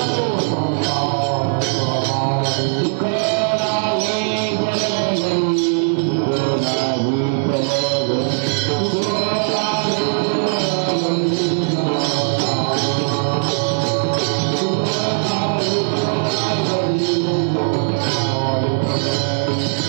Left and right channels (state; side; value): silent; left; digital silence